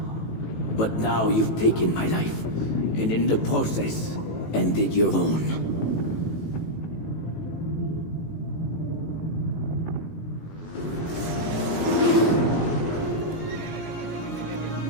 But now you've taken my life, and in the process, ended your own.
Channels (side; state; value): right; late; 18 ms